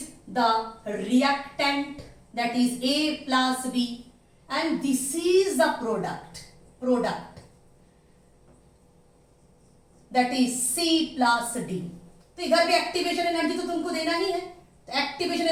the reactant that is A plus B and this is the product that is C plus D। तो इधर भी एक्टिवेशन एनर्जी तो तुमको देना ही है, तो एक्टिवेशन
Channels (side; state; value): both; identical; correlation 1.00